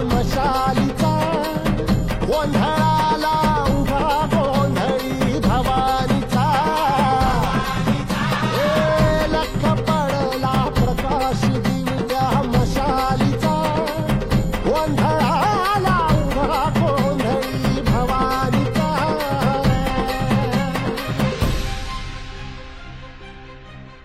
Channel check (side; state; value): both; identical; correlation 1.00